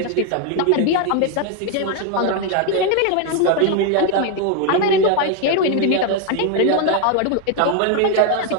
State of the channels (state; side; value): different; both; correlation 0.01